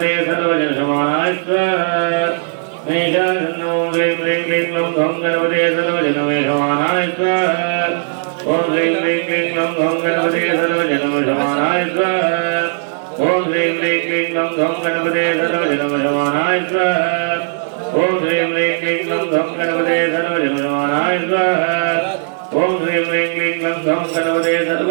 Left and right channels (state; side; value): silent; left; 68 dB below the other